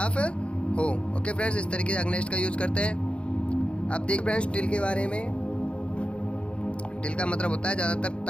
हो? ओके फ्रेंड्स, इस तरीके से अगेंस्ट का यूज करते हैं। अब देख फ्रेंड्स, टिल के बारे में। टिल का मतलब होता है ज़्यादातर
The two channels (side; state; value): right; late; 0.059 ms